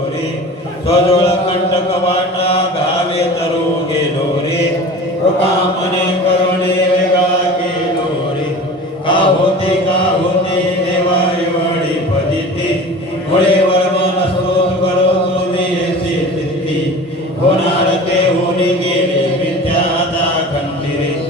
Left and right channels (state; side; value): normal; both; correlation 0.37